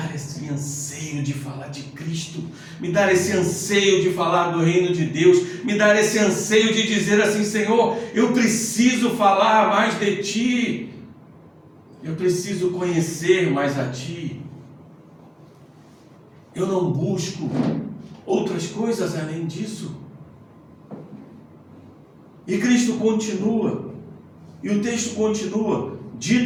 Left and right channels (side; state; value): both; identical; correlation 1.00